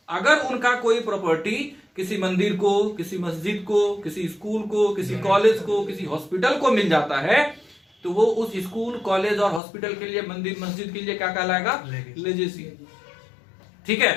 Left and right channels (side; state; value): right; drops out; at 9.6 s